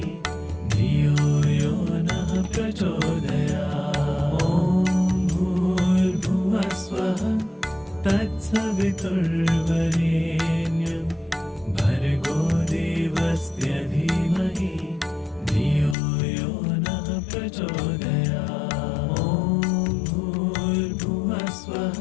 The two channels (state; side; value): drops out; right; at 16.0 s